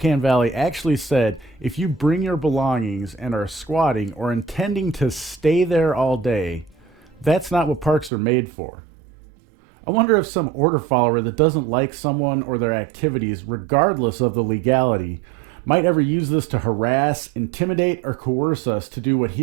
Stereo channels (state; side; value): drops out; left; at 8.1 s